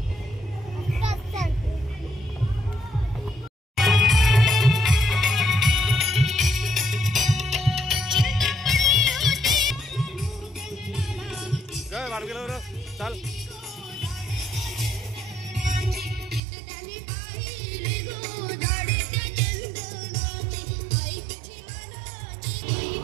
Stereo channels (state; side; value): drops out; left; at 16.4 s